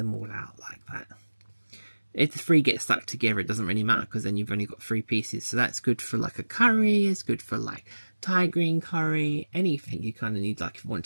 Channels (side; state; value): both; inverted; correlation -1.00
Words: all out like that. If the 3 get stuck together, it doesn't really matter, because then you've only got 3 pieces. So that's good for like a curry, it's good for like Thai green curry, anything you kind of need. Like if you want